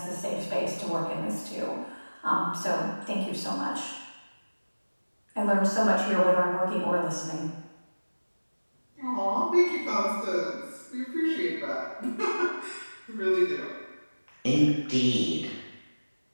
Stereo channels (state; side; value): inverted; both; correlation -1.00